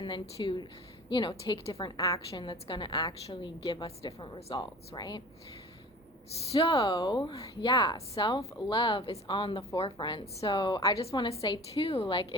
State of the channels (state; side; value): normal; both; correlation 0.40